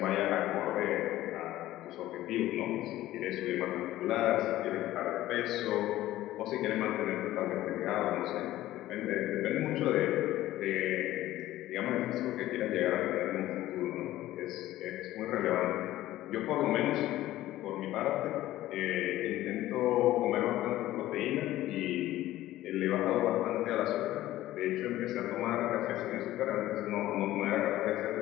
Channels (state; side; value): quieter; right; 15.0 dB